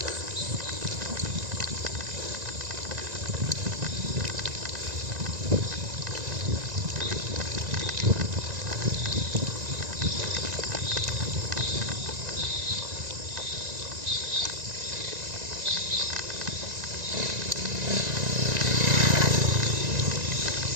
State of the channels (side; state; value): left; late; 1.9 ms